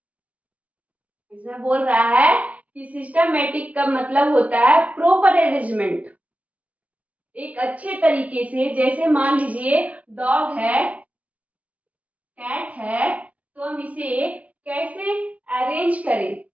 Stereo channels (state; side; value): late; left; 0.068 ms